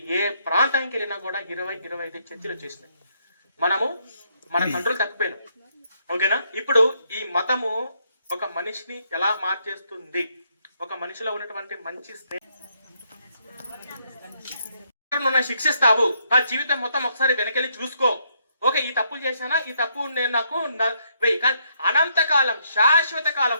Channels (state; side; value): inverted; both; correlation -0.73